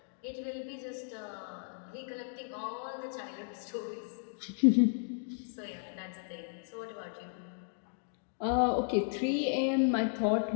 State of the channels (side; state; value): right; silent; digital silence